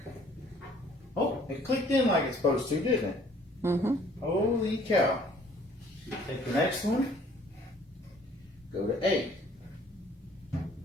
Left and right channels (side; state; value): both; normal; correlation 0.57